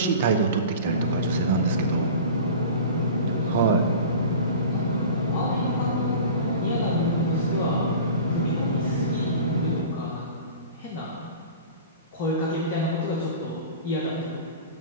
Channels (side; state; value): both; inverted; correlation -0.37